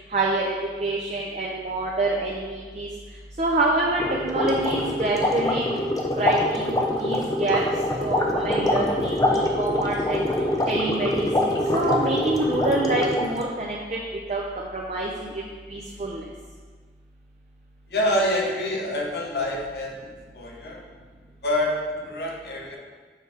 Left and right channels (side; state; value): both; normal; correlation 0.38